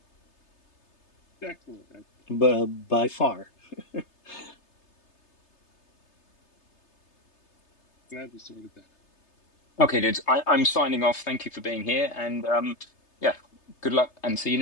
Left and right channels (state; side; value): late; right; 3.3 ms